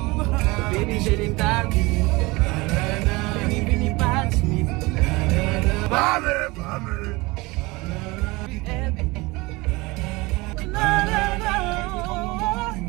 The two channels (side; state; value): left; quieter; 23.2 dB